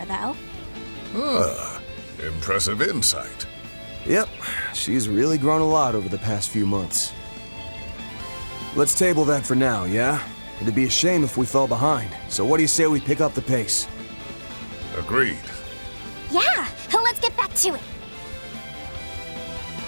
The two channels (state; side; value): inverted; both; correlation -1.00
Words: though. Ah, impressive insight. Yep, she's really grown a lot over the past few months. Let's table that for now, yeah? It'd be a shame if we fell behind. So what do you say we pick up the pace? Agreed. Yeah, let's get back to it.